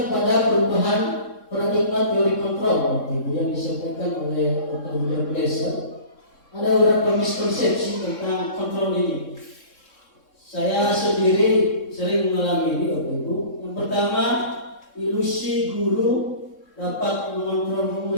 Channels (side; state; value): right; late; 3.7 ms